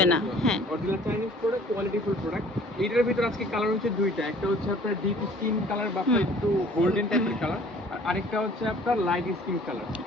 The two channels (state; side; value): normal; both; correlation 0.52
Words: না। হ্যাঁ, original Chinese product, quality full product. এইটার ভিতর আজকে কালার হচ্ছে দুইটা, একটা হচ্ছে আপনার ডিপ স্কিন কালার বা আপনার একটু গোল্ডেন টাইপের কালার, আর আরেকটা হচ্ছে আপনার লাইট স্কিন কালার।